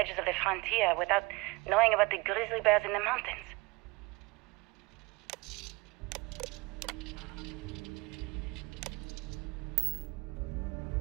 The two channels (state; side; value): quieter; left; 24.6 dB